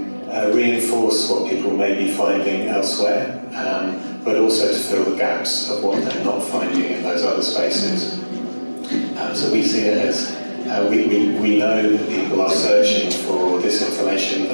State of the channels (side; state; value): both; inverted; correlation -1.00